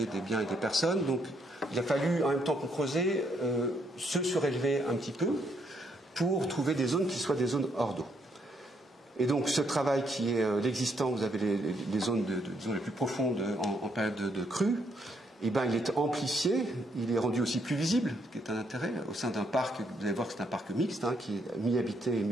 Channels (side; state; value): both; normal; correlation 0.74